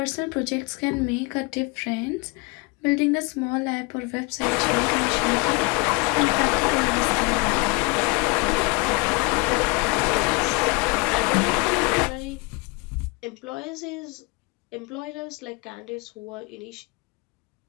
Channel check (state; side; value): quieter; right; 28.1 dB